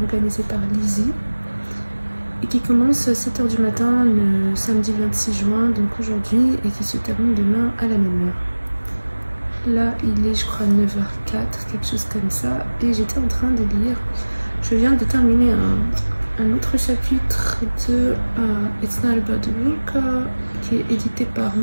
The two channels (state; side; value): inverted; both; correlation -1.00